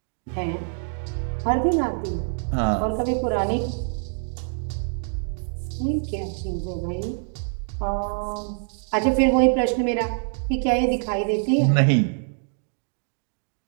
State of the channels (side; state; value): left; silent; digital silence